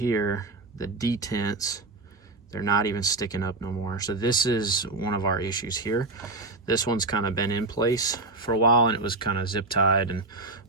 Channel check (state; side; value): quieter; left; 3.2 dB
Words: the detents, they're not even sticking up no more. So this is one of our issues here. This one's kind of been in place for a while, and it was kind of zip tied and